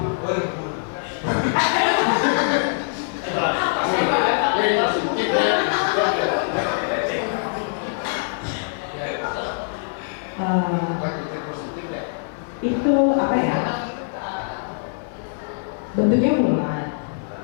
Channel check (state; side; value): silent; right; digital silence